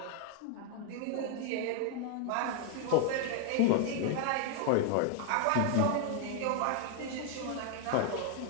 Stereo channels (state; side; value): different; both; correlation 0.00